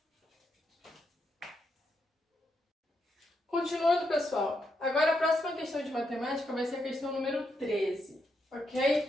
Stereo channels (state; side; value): normal; both; correlation 0.81